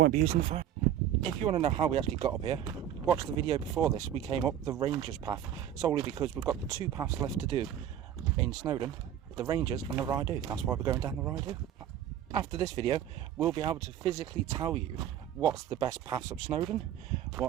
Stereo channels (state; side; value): quieter; left; 10.6 dB